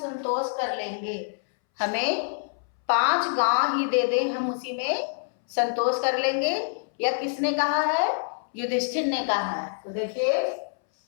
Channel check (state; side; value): silent; right; 61 dB below the other